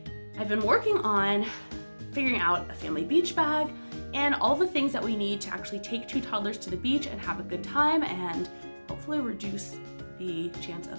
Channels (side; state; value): both; inverted; correlation -1.00